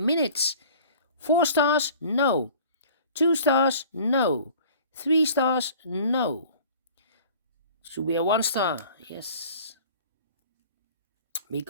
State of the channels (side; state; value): both; inverted; correlation -0.47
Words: 4 stars, no. 2 stars, no. 3 stars, no. Should be a 1 star, yes.